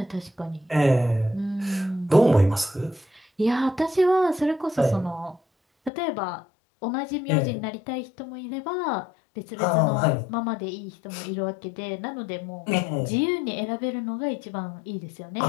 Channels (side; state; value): right; drops out; at 5.9 s